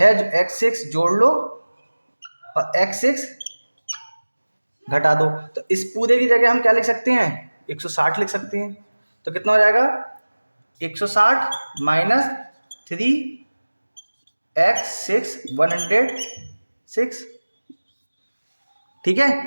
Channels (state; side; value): inverted; both; correlation -1.00